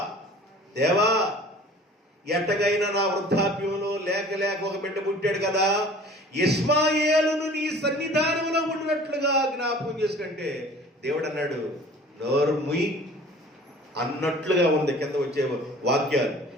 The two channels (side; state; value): both; normal; correlation 0.46